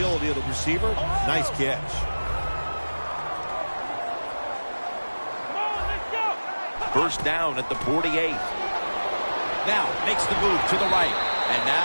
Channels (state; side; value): inverted; both; correlation -1.00